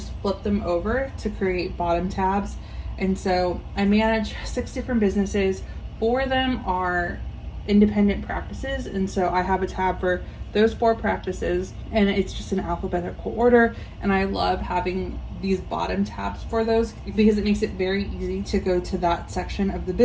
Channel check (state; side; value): identical; both; correlation 1.00